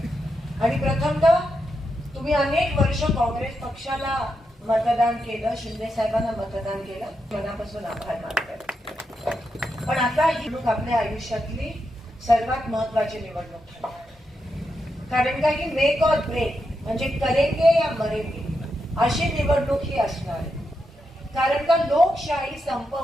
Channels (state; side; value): normal; both; correlation 0.85